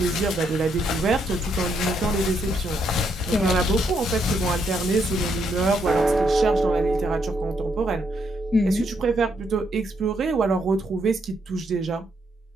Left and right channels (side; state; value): both; normal; correlation 0.76